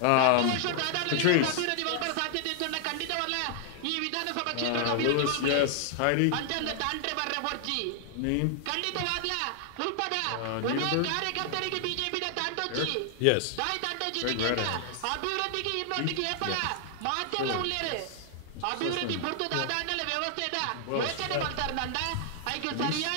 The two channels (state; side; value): different; both; correlation 0.00